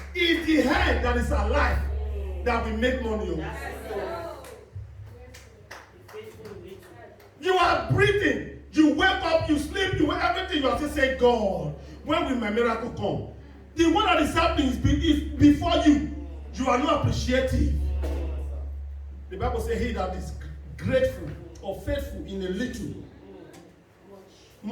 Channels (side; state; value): both; identical; correlation 1.00